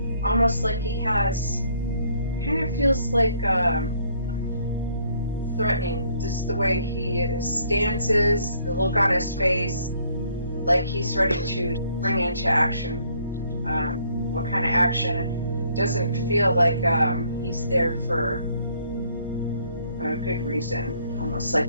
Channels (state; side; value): inverted; both; correlation -0.65